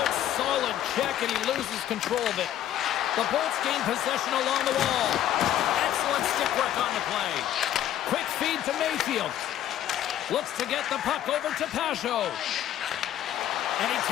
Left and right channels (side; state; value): right; quieter; 11.7 dB